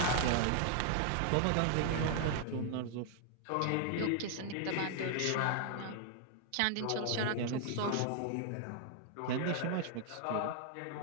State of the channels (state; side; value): different; both; correlation 0.00